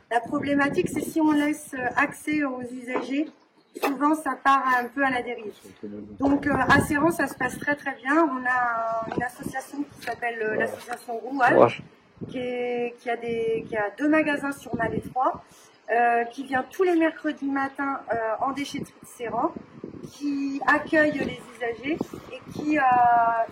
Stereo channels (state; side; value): identical; both; correlation 1.00